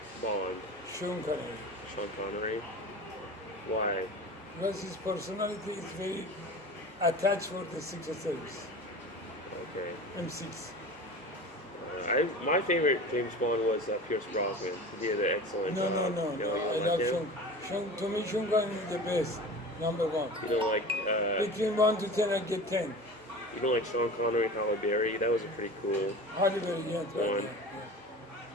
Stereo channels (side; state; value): both; normal; correlation 0.35